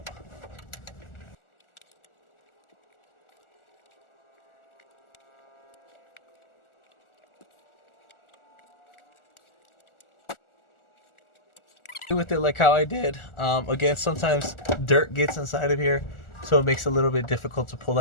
With it like how I did. Again, sometimes dirt gets inside of here, so it makes it a little bit difficult to pull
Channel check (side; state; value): right; late; 1.4 ms